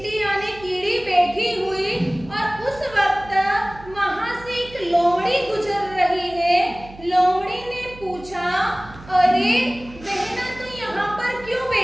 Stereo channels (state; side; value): noise; right; hum, 19 dB below the sound